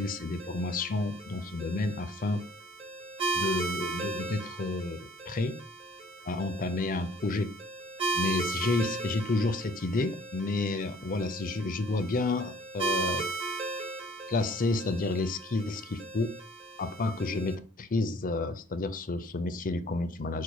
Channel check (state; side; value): normal; both; correlation 0.56